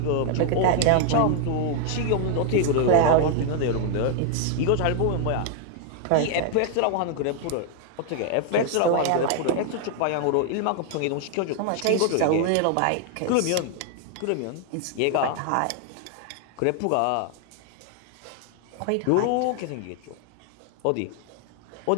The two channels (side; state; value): both; different; correlation 0.00